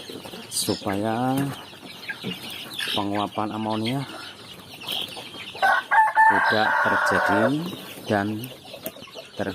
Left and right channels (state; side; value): identical; both; correlation 1.00